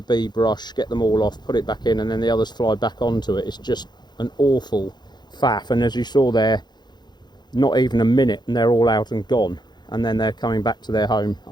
bee brush, get them all off, put it back in, and then the others fly back onto it. It's just an awful faff. And as you saw there, not even a minute and they're all out and gone, and then they're coming back to their home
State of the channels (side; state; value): right; late; 0.21 ms